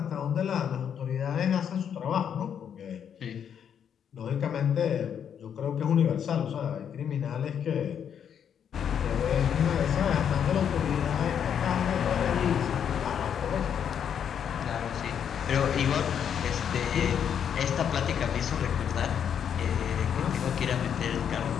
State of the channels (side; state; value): right; quieter; 8.3 dB